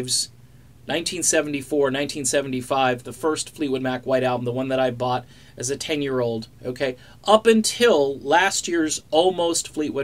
1974, 1975, the first Fleetwood Mac White Album, the one that I bought as a 10-year-old, okay, up until last year's almost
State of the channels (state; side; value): identical; both; correlation 1.00